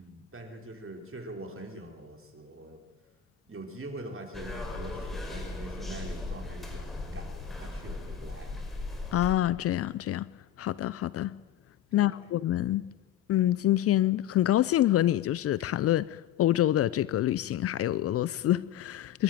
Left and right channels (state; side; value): quieter; right; 11.2 dB